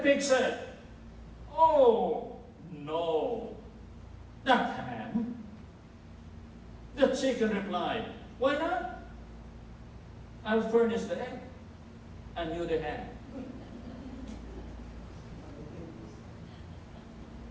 said, oh, no, not ham. The chicken replied, why not? I'll furnish the egg and you the ham.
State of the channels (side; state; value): both; identical; correlation 1.00